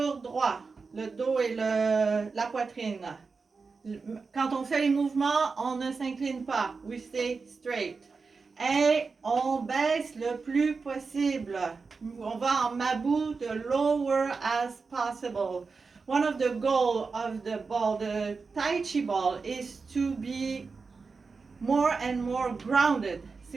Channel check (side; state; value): left; quieter; 4.6 dB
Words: droit. Le dos et la poitrine. Quand on fait les mouvements, on ne s'incline pas. We stay straight. Et on baisse le plus possible. On va en mabou, the lower as possible. One of the goals of the ball, the Tai Chi ball, is to be more and more grounded.